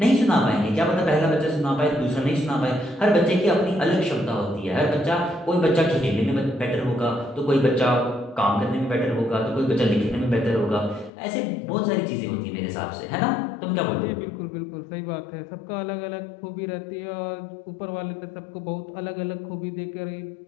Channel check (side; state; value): right; drops out; at 11.1 s